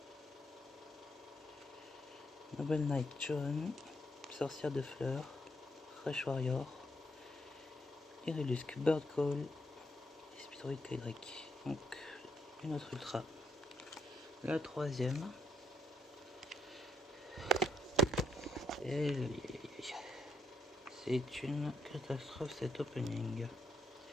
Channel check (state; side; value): normal; both; correlation 0.75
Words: Noble Knight John, Sorcière de Fleurs, Fresh Warrior, Iridusc Bird Call et Speedroid Kydrake. Donc une autre ultra. La troisième. Et c'est une catastrophe cet opening.